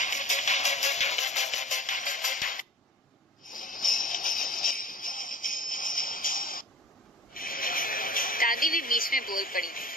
दादी भी बीच में बोल पड़ी।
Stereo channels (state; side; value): normal; both; correlation 0.42